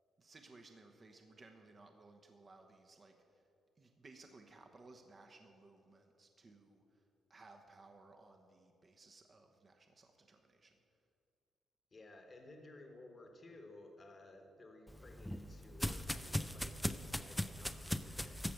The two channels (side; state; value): both; normal; correlation 0.97